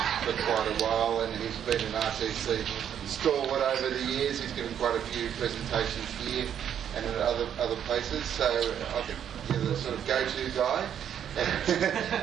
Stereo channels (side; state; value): left; quieter; 9.2 dB